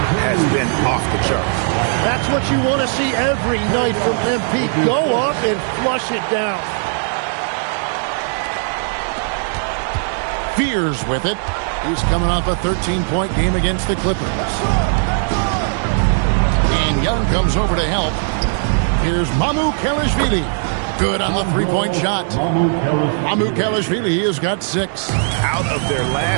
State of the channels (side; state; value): left; silent; 65 dB below the other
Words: has been off the charts. That's what you want to see every night from MP. Go up and flush it down. Fears with it. He's coming off a 13-point game against the Clippers. And Young comes over to help. Here's Mamukelashvili. Good on the three-point shot. Mamukelashvili has got 6. Out of their